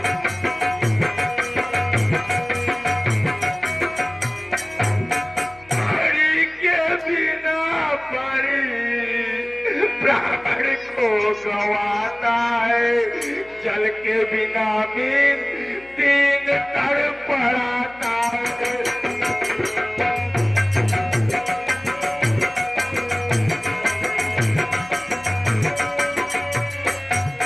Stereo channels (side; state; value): left; noise; hum, 25 dB below the sound